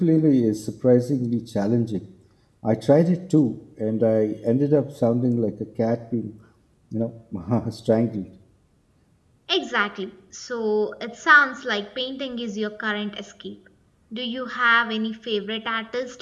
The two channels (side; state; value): both; identical; correlation 1.00